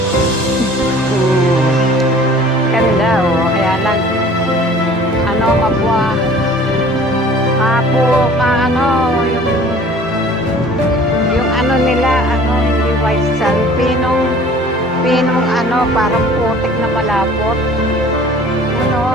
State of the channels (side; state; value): both; normal; correlation 0.48